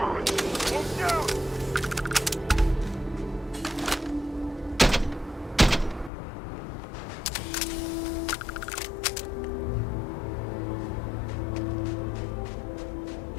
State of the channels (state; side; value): drops out; right; at 6.1 s